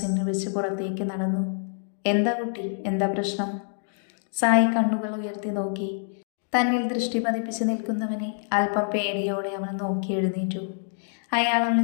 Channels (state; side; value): silent; right; digital silence